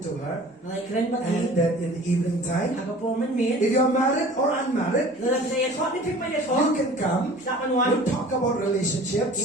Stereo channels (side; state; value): both; normal; correlation 0.45